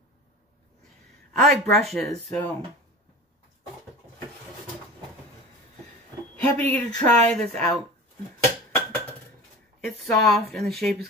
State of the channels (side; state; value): both; normal; correlation 0.35